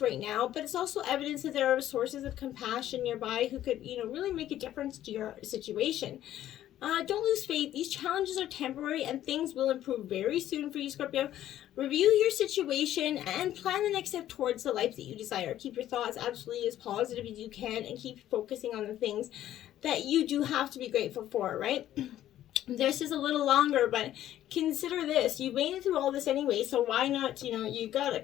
right now, but it's also evidence that there are sources of compassion nearby who could, you know, really make a difference to your situation. Don't lose faith. These challenges are temporary and things will improve very soon for you, Scorpio. Review your situation and plan the next step towards the life that you desire. Keep your thoughts absolutely as positive as you can and keep focusing on the things that you do have to be grateful for, right? This is a little longer, but consider this. You made it through all this anyway, so why not, you know, you got a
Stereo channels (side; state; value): right; quieter; 12.5 dB